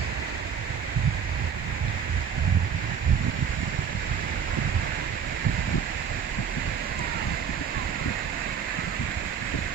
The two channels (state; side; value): quieter; left; 7.3 dB